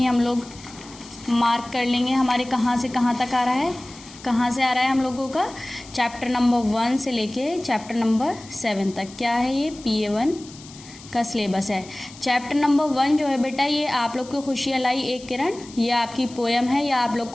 हम लोग मार्क कर लेंगे हमारे कहाँ से कहाँ तक आ रहा है। कहाँ से आ रहा है हम लोगों का? चैप्टर नंबर 1 से लेके चैप्टर नंबर 7 तक। क्या है ये? PA1 का सिलेबस है। चैप्टर नंबर 1 जो है बेटा, ये आप लोग को खुशियाँ लाई एक किरण, ये आपकी पोएम है, या आप लोग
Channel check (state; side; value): noise; left; hiss, 19 dB below the sound